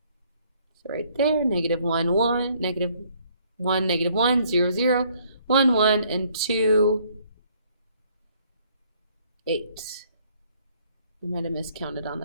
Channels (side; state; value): both; inverted; correlation -0.64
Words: So right there, -1, 1, -1, -1, 0, 0, 1, 1, and 2, 8. I might have miscounted on